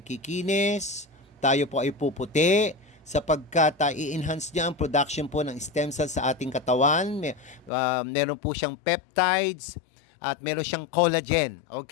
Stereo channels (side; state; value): right; drops out; at 7.7 s